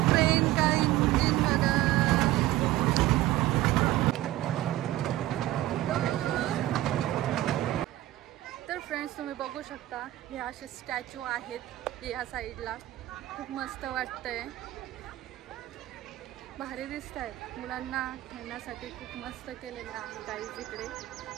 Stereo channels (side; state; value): left; quieter; 15.5 dB